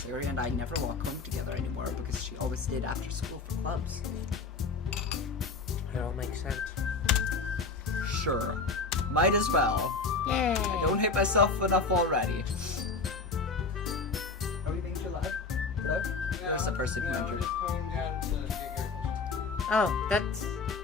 Yuri and I never walk home together anymore because she always stayed after school for clubs. It all makes sense. Sure. Might as well. Yay! I don't hate myself enough already. Are we being too loud? Hello? There's a person who entered. Oh,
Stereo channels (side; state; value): right; quieter; 4.2 dB